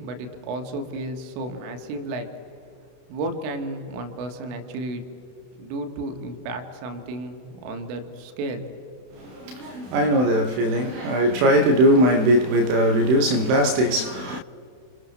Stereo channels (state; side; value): late; left; 31 ms